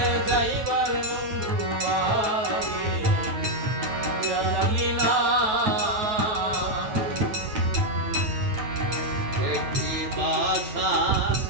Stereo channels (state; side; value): late; left; 9.2 ms